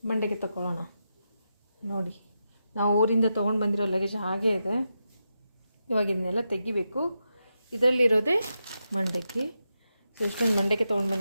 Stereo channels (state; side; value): inverted; both; correlation -0.87